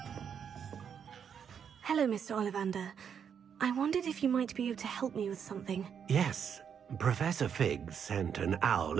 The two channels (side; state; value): left; quieter; 7.6 dB